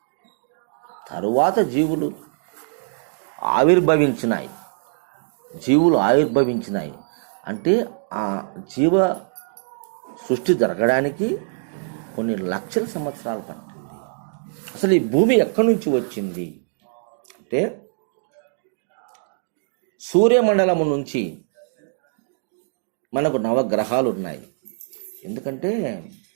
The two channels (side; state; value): left; silent; digital silence